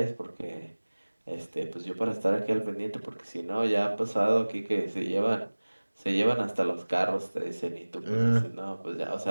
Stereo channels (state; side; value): inverted; both; correlation -1.00